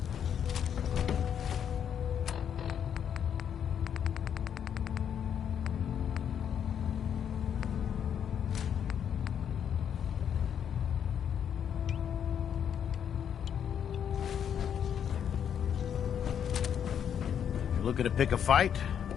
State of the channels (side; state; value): right; quieter; 8.6 dB